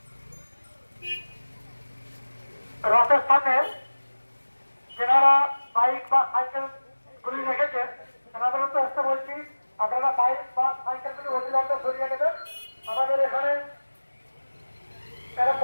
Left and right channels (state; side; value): inverted; both; correlation -1.00